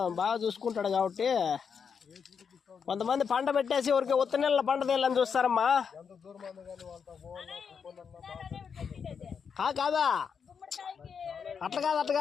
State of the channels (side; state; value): right; quieter; 6.5 dB